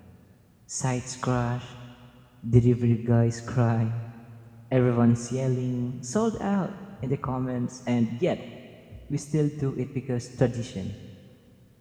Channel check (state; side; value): identical; both; correlation 1.00